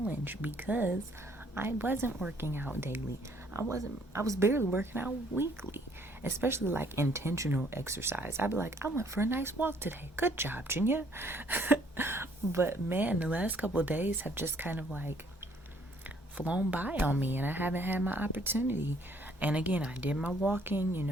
because I wasn't working out daily. I was barely working out weekly, especially like intentional exercise. I'd be like, I went for a nice walk today. Good job, Junior. But man, the last couple of days have just kind of like flown by on me, and I haven't had my opportunity. And again, I did my walking,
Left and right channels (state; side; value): normal; both; correlation 0.63